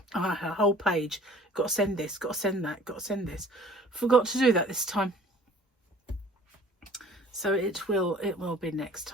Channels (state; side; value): normal; both; correlation 0.51